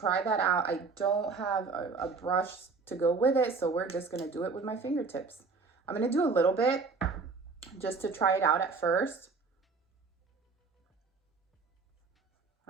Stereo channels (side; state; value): left; quieter; 4.5 dB